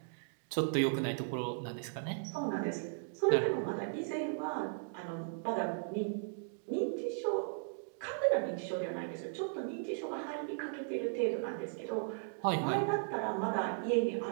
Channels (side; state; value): left; silent; digital silence